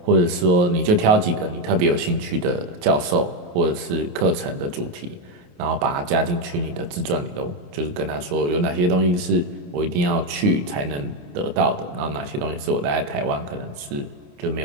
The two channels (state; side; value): late; left; 28 ms